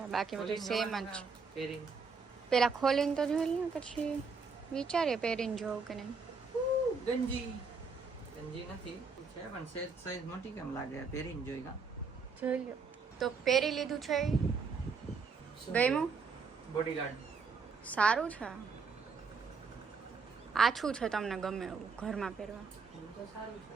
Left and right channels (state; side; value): quieter; left; 4.9 dB